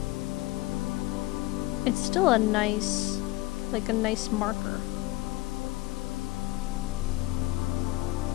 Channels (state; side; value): quieter; right; 19.2 dB